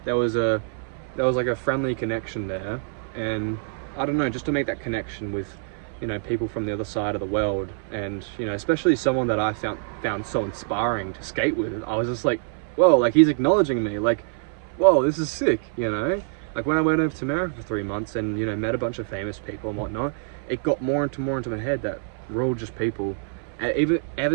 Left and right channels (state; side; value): silent; left; 57 dB below the other